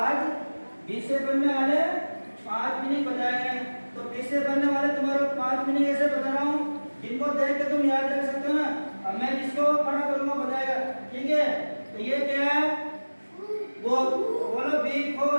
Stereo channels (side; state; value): both; inverted; correlation -1.00